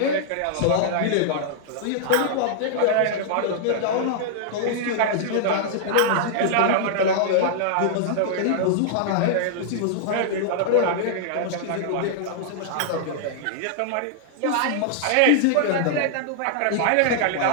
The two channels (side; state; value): both; different; correlation -0.01